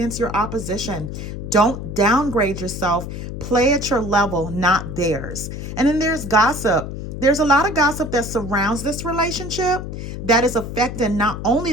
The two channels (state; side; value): noise; left; hum, 7 dB below the sound